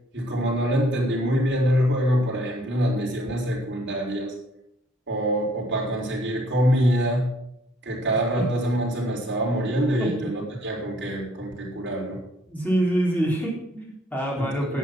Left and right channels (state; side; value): normal; both; correlation 0.63